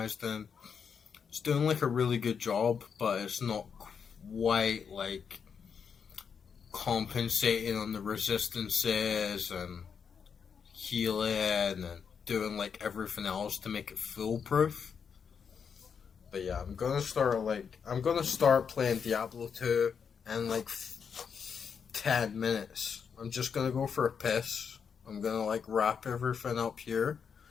in. It's doing like a really good job, but it's not quite like compensating on the resistances and healing and doing like everything else to make it foolproof. But yeah, I'm gonna start playing Diablo 2 in like 10 minutes. I'm just gonna go for a piss. I'm gonna like wrap everything up here.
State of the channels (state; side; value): quieter; right; 6.7 dB